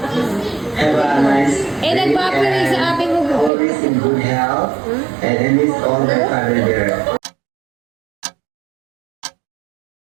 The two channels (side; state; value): left; drops out; at 3.5 s